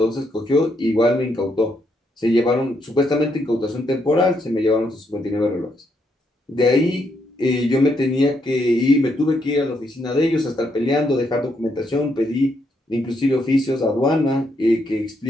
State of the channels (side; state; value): both; normal; correlation 0.77